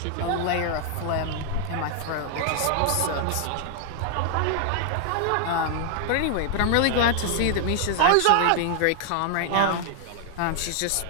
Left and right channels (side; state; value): both; different; correlation 0.00